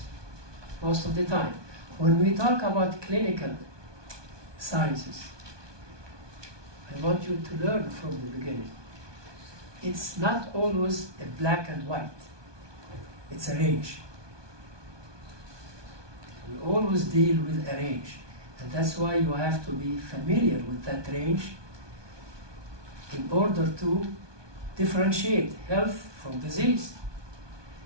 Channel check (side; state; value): left; late; 1.2 ms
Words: most of the time, when we talk about clinical sciences, I want you to learn from the beginning. It's not always a black and white. It's a range. We always deal with a range. And that's why you have to be familiar with that range in order to differentiate health from disease.